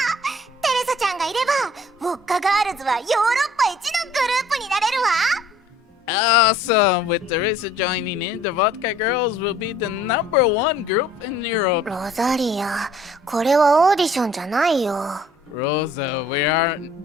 テレサちゃんがいればウォッカガールズはヨーロッパ一のグループになれるわ。 Awesome! With Teresa joining in, the Vodka Girls will be the #1 group in Europe. ロザリア、これはオーディションじゃないよ。 Rosa, we are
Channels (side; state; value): both; normal; correlation 0.55